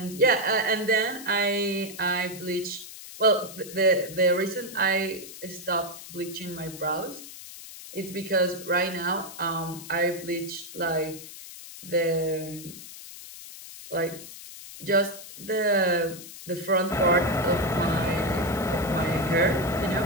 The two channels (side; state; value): left; noise; hiss, 14 dB below the sound